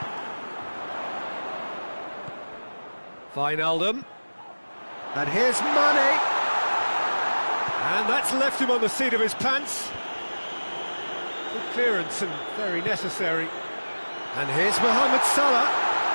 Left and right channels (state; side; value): inverted; both; correlation -1.00